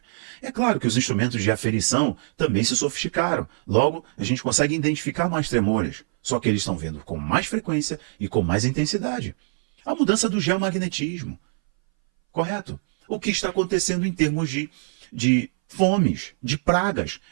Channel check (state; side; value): silent; left; 61 dB below the other